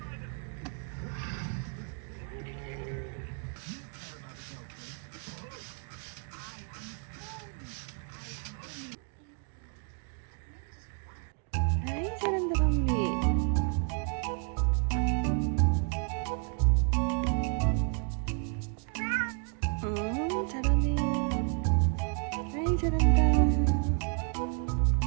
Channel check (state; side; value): quieter; left; 38.2 dB